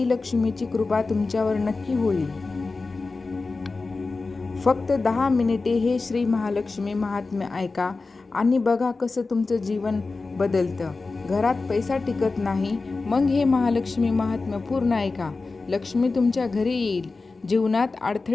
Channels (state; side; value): quieter; right; 3.8 dB